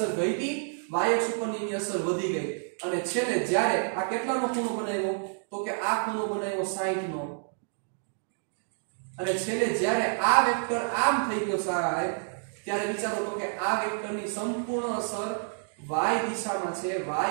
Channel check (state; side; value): silent; left; digital silence